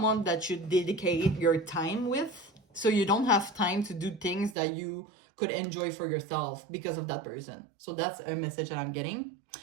that you dedicate your time with. So you don't have time to do things that you could enjoy for yourself because of that person. So that's a message that I'm getting.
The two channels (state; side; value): drops out; left; at 4.5 s